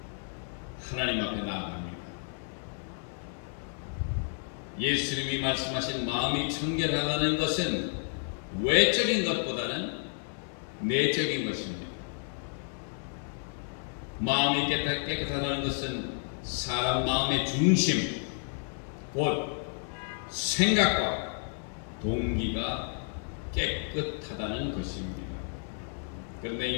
하나님 앞에 나아갑니다. 예수님이 말씀하신 마음이 청결하다는 것은 외적인 것보다는 내적인 것입니다. 마음이 깨끗하다는 것은 사람 마음의 중심, 곧 생각과 동기가 깨끗하다는 것입니다. 그런데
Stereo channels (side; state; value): right; silent; 57 dB below the other